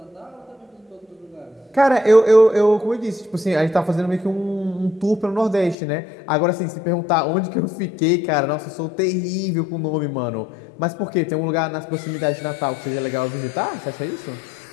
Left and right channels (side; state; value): right; drops out; at 5.8 s